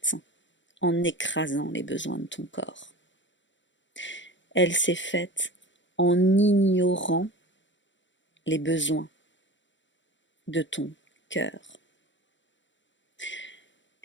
en écrasant les besoins de ton corps. Elle s'est faite en ignorant les besoins de ton cœur.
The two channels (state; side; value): late; right; 0.54 ms